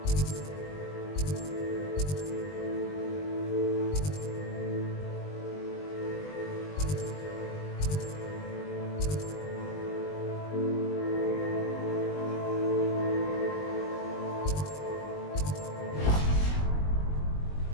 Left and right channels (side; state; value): right; late; 20 ms